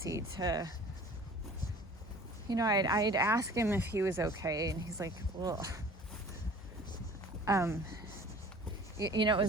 to, I'd ask him if he was okay, and he's like, well, it was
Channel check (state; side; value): normal; both; correlation 0.47